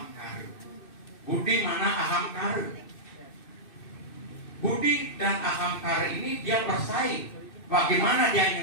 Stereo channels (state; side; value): late; right; 2.6 ms